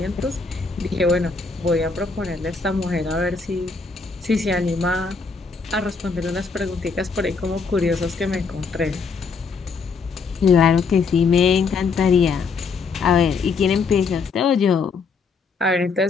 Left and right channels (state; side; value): quieter; right; 4.8 dB